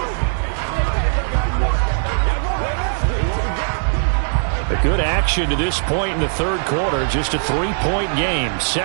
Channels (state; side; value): silent; left; digital silence